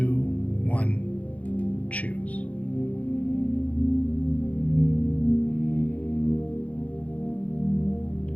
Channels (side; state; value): right; late; 0.068 ms